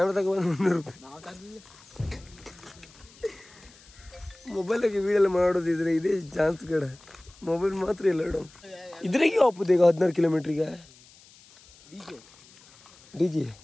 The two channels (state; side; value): noise; left; hiss, 25 dB below the sound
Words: ತಗೊಂಡು 300 ರೂಪಾಯಿ. ಮೊಬೈಲಾಗೆ ವೀಡಿಯೋ ಮಾಡೋದಿದ್ರೆ ಇದೇ ಚಾನ್ಸ್ ಕಡೆ. ಮೊಬೈಲ್ ಮಾತ್ರ ಇಲ್ಲ ಇಡೋ. ಇದ್ರಾಗೆ ಹೋಗ್ಬೋದು ಈಗ 16 ಕಿಲೋಮೀಟ್ರಿಗೆ. ಡಿಜೆ